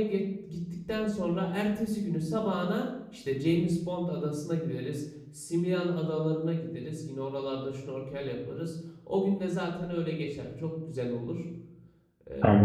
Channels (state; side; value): identical; both; correlation 1.00